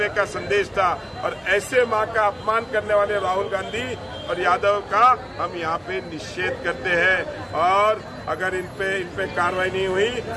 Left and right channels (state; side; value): identical; both; correlation 1.00